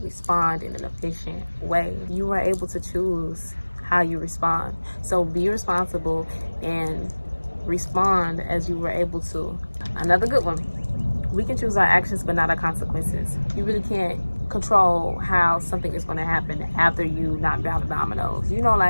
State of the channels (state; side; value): inverted; both; correlation -1.00